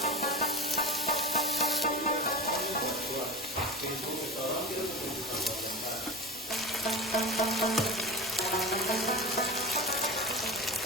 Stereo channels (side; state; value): both; normal; correlation 0.28